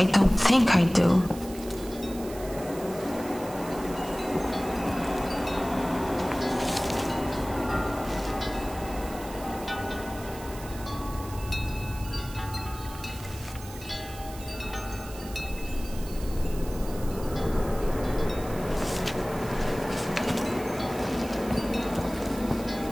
don't think I do.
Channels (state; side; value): noise; right; hiss, 16 dB below the sound